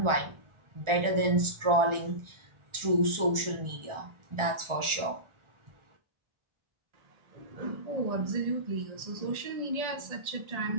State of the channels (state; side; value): late; left; 1.4 ms